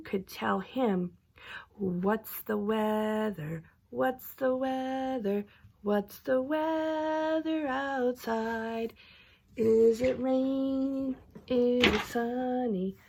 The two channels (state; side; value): identical; both; correlation 1.00